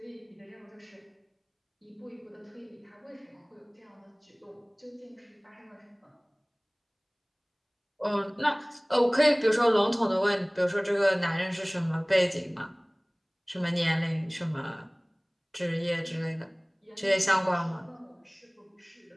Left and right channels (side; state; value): both; identical; correlation 1.00